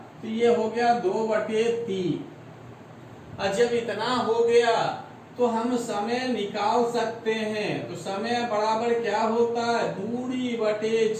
तो ये हो गया 2/3। और जब इतना हो गया तो हम समय निकाल सकते हैं। तो समय बराबर क्या होता है, दूरी बटे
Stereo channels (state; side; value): identical; both; correlation 1.00